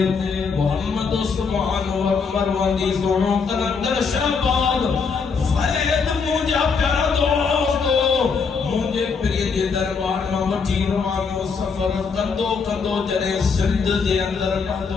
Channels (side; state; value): right; quieter; 5.3 dB